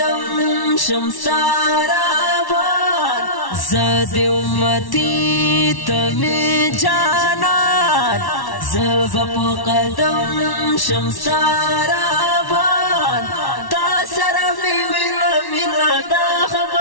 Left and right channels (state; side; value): late; right; 1.1 ms